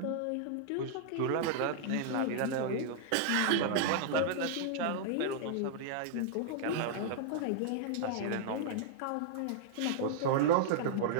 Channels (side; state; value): both; different; correlation -0.01